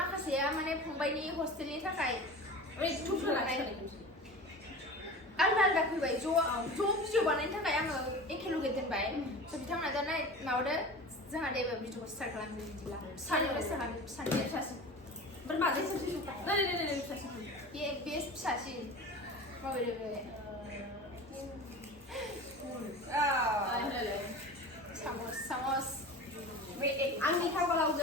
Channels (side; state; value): both; normal; correlation 0.34